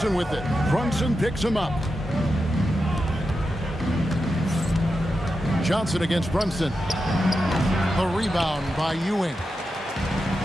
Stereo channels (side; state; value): both; normal; correlation 0.89